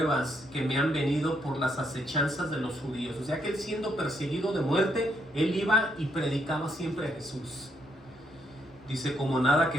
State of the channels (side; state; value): both; normal; correlation 0.75